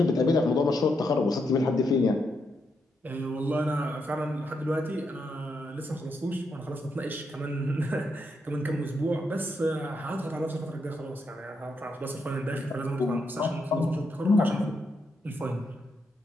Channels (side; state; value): both; normal; correlation 0.81